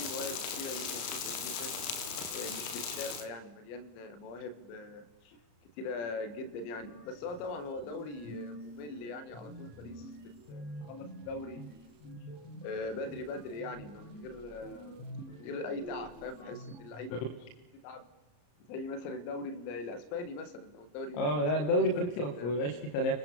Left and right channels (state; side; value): late; right; 34 ms